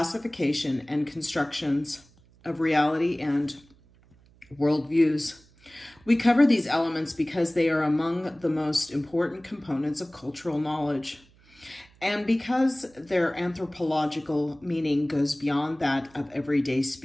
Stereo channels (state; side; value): noise; right; hum, 29 dB below the sound